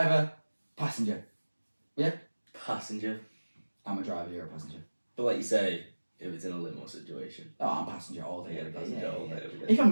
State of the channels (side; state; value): both; inverted; correlation -1.00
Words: passenger. Yeah? Passenger. I'm a driver, you're a passenger. But like you say, if it's in a limo situation. Oh, I'm passenger all day. Yeah, passenger all day, every day. If I'm